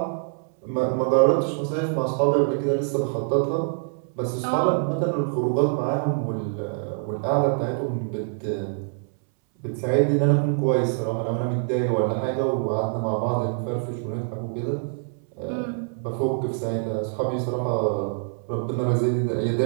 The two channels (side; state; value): left; silent; 62 dB below the other